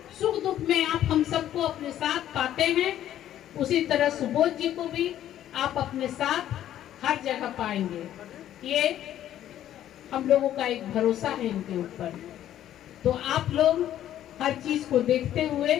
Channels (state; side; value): quieter; right; 11.8 dB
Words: सुख दुख में आप हम सबको अपने साथ पाते हैं, उसी तरह सुबोध जी को भी आप अपने साथ हर जगह पाएंगे। ये हम लोगों का एक भरोसा है इनके ऊपर। तो आप लोग हर चीज को देखते हुए